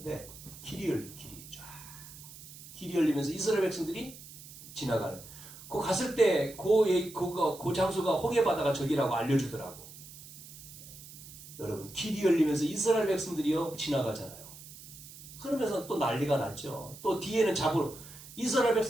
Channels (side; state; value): right; noise; hiss, 16 dB below the sound